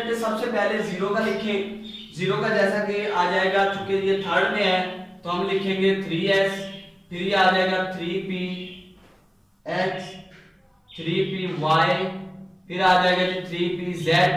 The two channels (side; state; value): both; identical; correlation 1.00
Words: सबसे पहले 0 का लिखें। 0 का जैसा कि आ जाएगा, चूंकि ये थर्ड में है तो हम लिखेंगे 3s, फिर ये आ जाएगा 3px 3py, फिर आ जाएगा जी 3pz।